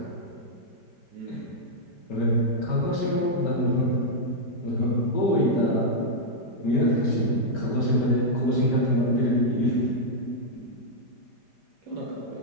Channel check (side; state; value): right; late; 5.1 ms